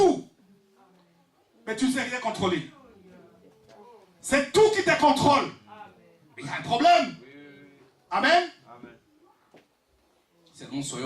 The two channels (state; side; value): identical; both; correlation 1.00